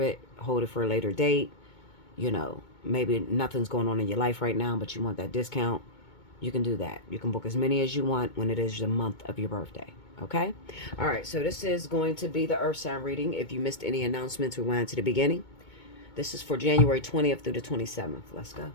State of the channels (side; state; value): right; late; 2.2 ms